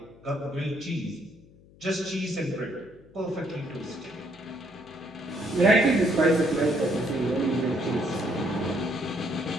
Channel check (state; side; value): noise; left; hum, 25 dB below the sound